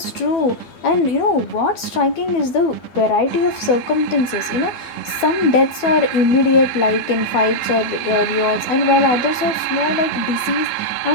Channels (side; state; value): right; late; 12 ms